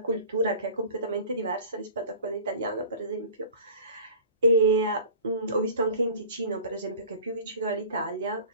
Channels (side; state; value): both; inverted; correlation -0.43